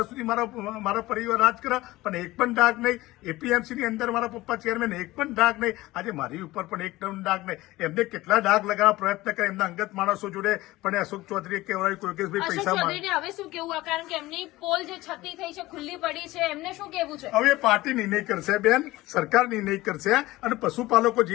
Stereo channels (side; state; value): right; quieter; 18.4 dB